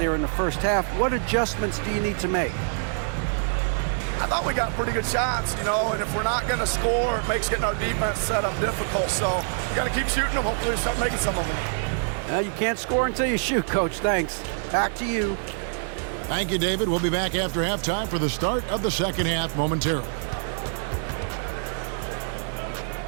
in the first half. What adjustments do you need to make? I thought we got pretty good shots, you know, and if we're not going to score, it makes getting our defense set up difficult. So you got to keep shooting them. Hopefully we start making some of them. You can't score until you shoot, Coach. Thanks. Back to you. Thank you, David. We'll be back after halftime for the start of the second half momentarily.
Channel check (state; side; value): silent; left; 59 dB below the other